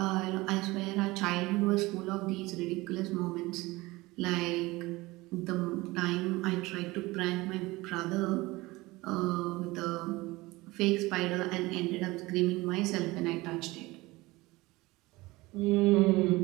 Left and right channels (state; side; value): quieter; left; 20.9 dB